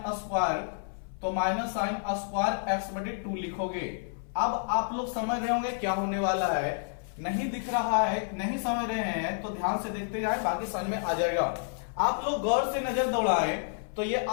स्क्वायर, तो माइनस साइन स्क्वायर x बटे 2 लिखोगे। अब आप लोग समझ रहे होंगे क्या होने वाला है। नहीं दिख रहा है, नहीं समझ रहे हैं तो ध्यान से देखते जाए, बाकी समझ में आ जाएगा। आप लोग गौर से नजर दौड़ाएं तो ये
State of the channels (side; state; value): right; silent; 58 dB below the other